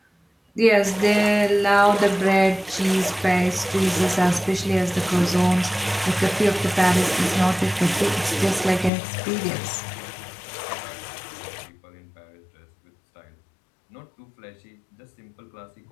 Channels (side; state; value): right; drops out; at 8.9 s